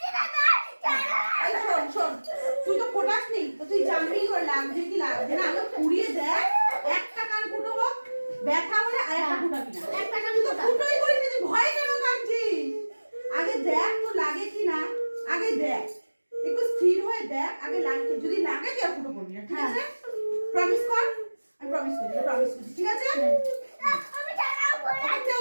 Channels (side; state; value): both; inverted; correlation -1.00